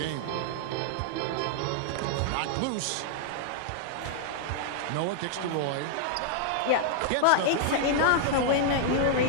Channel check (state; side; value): different; both; correlation -0.01